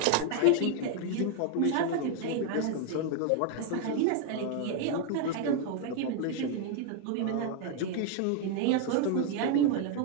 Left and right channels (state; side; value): different; both; correlation 0.00